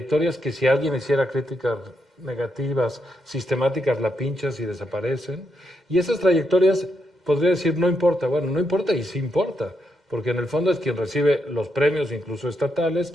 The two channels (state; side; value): normal; both; correlation 0.81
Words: que si alguien hiciera críticas negativas, sistemáticas, la pinchas y desaparecen. Y esas trayectorias, podría decir, no importa. Bueno, no importa y sí importa, porque en el fondo es quien recibe los premios, incluso estatales,